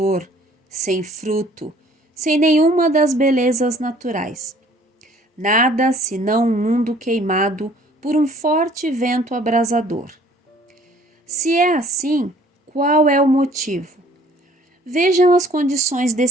sem fruto, sem nenhuma das belezas naturais. Nada senão um mundo queimado por um forte vento abrasador. Se é assim, qual é o motivo? Vejam as condições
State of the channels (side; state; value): both; normal; correlation 0.55